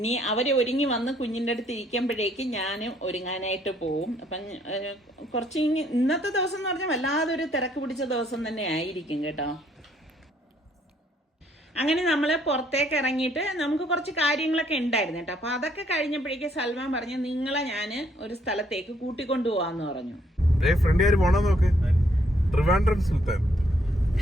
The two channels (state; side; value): normal; both; correlation 0.68